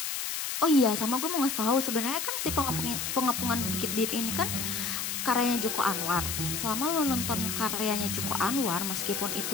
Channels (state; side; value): noise; left; hiss, 2 dB below the sound